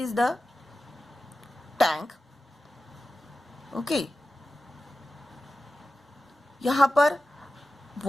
the tank. Okay, यहाँ पर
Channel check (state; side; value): normal; both; correlation 0.94